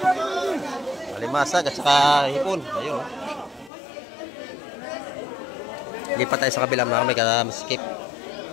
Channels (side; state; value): right; drops out; at 3.7 s